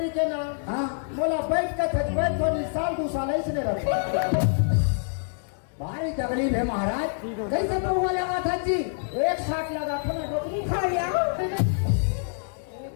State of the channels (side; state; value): right; silent; digital silence